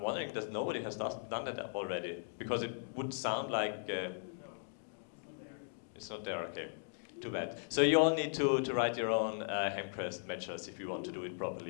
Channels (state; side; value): silent; right; digital silence